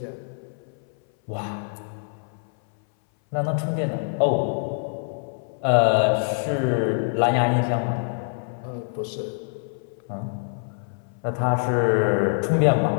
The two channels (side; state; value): right; silent; 60 dB below the other